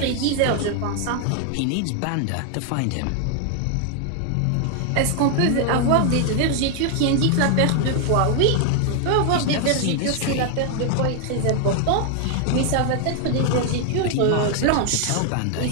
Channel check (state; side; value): different; both; correlation 0.00